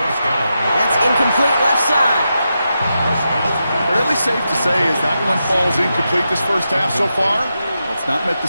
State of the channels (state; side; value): inverted; both; correlation -0.87